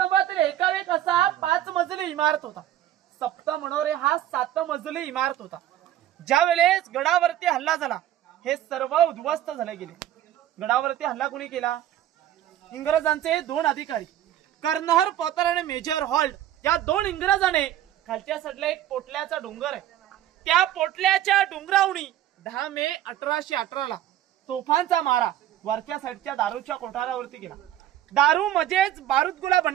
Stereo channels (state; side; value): quieter; left; 12.4 dB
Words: एकावेक असा 5 मजली इमारत होता. सप्त मनोरे हा 7 मजली इमारत होता. ज्या वेळेस गडावरती हल्ला झाला हे सर्व उद्ध्वस्त झाले गेले. गडावरती हल्ला कोणी केला? इंग्रजांचे 2 अधिकारी कर्नल पॉटर आणि मेजर हॉल्ट या 2 इंग्रजाने खालच्या साईडला एक पोटल्याचा डोंगर आहे, त्या पोटल्याच्या डोंगरावणी 10 मे 1818 ला तोफांचा मारा वरच्या साईडच्या दारूच्या कोठारावरती केला. दारू म्हणजेच बारूदगोळा